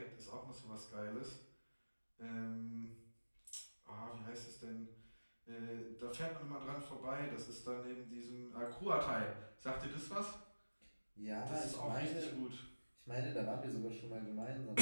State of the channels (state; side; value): inverted; both; correlation -1.00